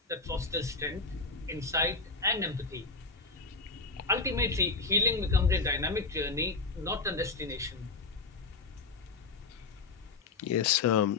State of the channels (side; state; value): right; quieter; 4.1 dB